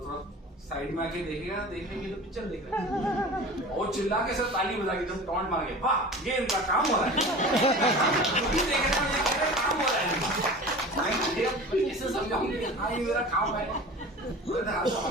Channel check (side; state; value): both; normal; correlation 0.37